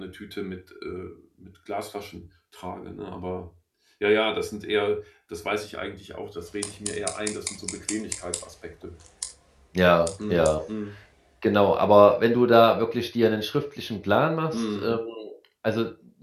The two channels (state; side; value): identical; both; correlation 1.00